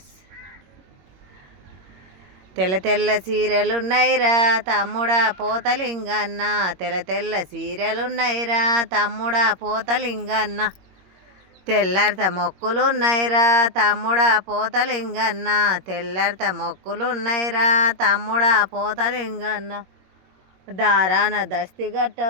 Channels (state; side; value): late; left; 21 ms